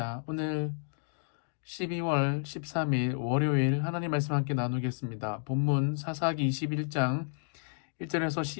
오늘 12월 13일 월요일 하나님 말씀 함께 나누겠습니다. 본문 사사기 21장 1절에서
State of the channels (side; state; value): right; silent; digital silence